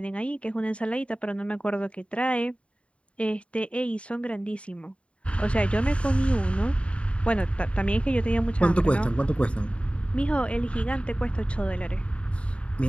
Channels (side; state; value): right; late; 0.061 ms